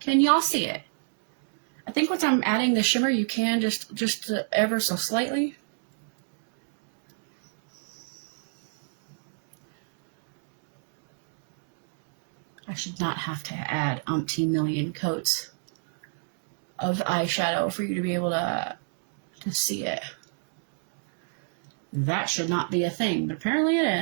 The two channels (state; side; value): silent; left; digital silence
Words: Can y'all see it? I think once I'm adding the shimmer, you can just ever so slightly. I should not have to add umpteen million coats of eyeshadow for you to be able to see it. That should not be a thing, but apparently it